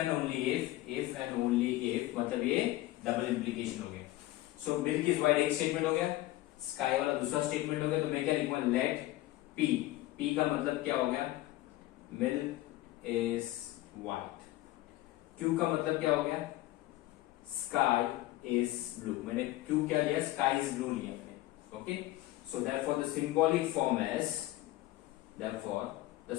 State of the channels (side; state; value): right; quieter; 16.8 dB